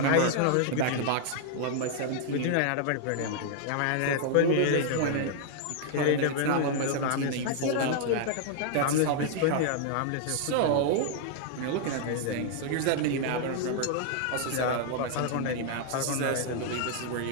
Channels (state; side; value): different; both; correlation -0.01